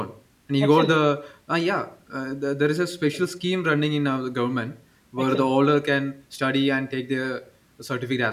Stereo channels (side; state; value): both; identical; correlation 1.00